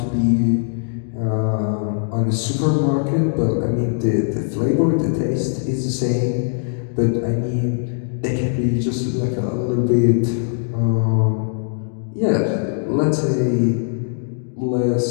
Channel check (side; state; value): right; silent; digital silence